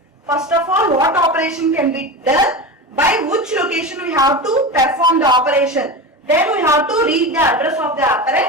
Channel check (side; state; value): both; normal; correlation 0.25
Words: First of all, what operation can be done, by which location we have to perform the operation. Then we have to read the address of the